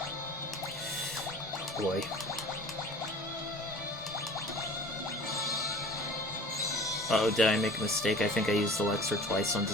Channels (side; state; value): both; normal; correlation 0.44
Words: Boy. Uh-oh, did I make a mistake? I think I used Elixir twice on the